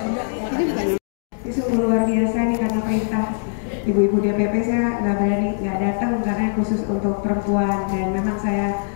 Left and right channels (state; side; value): silent; right; digital silence